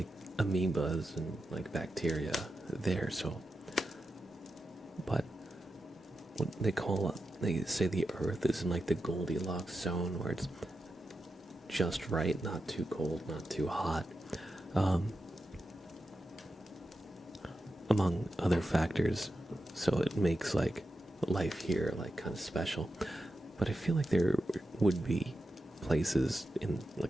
amoebas and like bacteria there, so. But what they say the Earth is in like the Goldilocks zone where it's just right, not too cold, not too hot. Among other factors, so it makes like life here like kind of special. But I feel like there would be places in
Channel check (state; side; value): normal; both; correlation 0.89